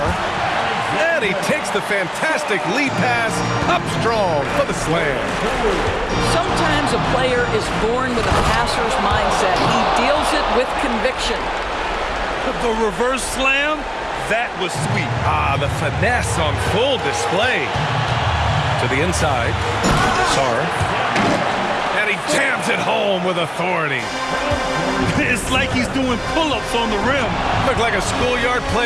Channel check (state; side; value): identical; both; correlation 1.00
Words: And he takes the fantastic lead pass up strong for the slam. Sometimes a player is born with a passer's mindset. He deals it with conviction. The reverse slam, that was sweet. Ah, the finesse on full display. To the inside. Sarr. And he jams it home with authority. It's like he's doing pull-ups on the rim. Looked like a schoolyard